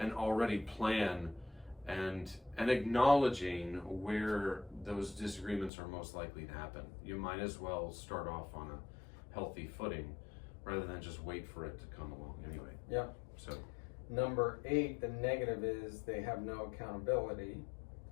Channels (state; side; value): drops out; right; at 5.7 s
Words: already plan and acknowledging where those disagreements are most likely to happen. You might as well start off on a healthy footing rather than just wait for it to come along anyway. Yeah. So number 8, the negative is they have no accountability